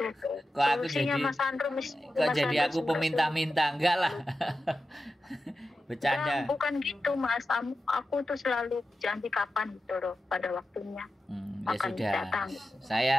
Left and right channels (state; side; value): normal; both; correlation 0.92